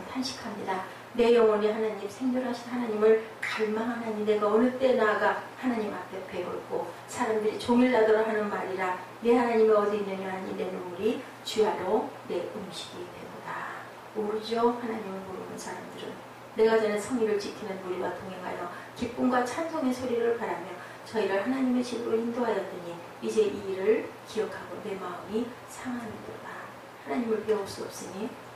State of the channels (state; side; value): identical; both; correlation 1.00